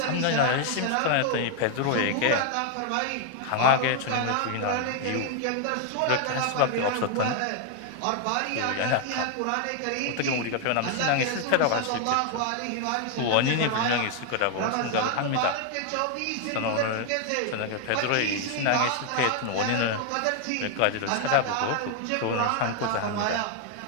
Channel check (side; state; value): both; different; correlation 0.00